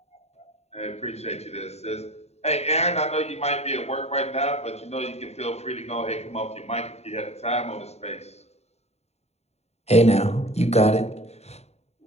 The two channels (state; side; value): late; right; 0.31 ms